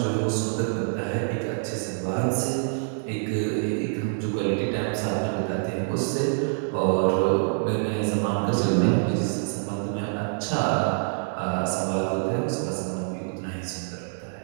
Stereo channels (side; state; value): left; silent; digital silence